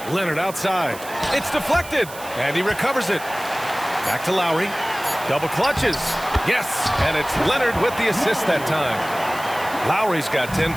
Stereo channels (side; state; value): right; noise; hiss, 15 dB below the sound